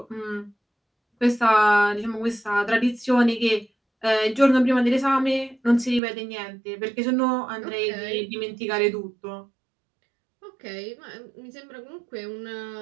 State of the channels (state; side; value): drops out; left; at 6.0 s